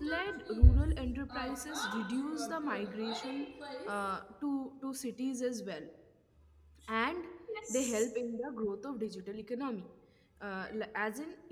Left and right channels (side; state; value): both; identical; correlation 1.00